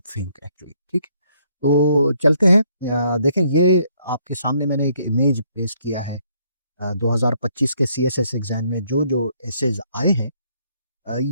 थिंक एक्चुअली, ठीक। तो चलते हैं, देखें ये आपके सामने मैंने एक इमेज पेश किया है। 2025 के सीएसएस एग्जाम में जो जो एसेज आए हैं,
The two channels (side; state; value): both; inverted; correlation -0.69